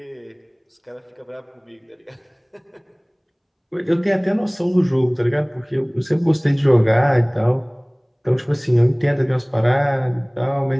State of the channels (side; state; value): both; identical; correlation 1.00